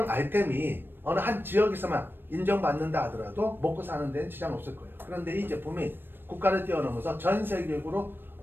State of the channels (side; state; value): left; late; 0.097 ms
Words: 아이템이 어느 한 지역에서만 인정받는다 하더라도 먹고 사는 데는 지장 없을 거예요. 그런데 이 제품이 국가를 뛰어넘어서 전 세계적으로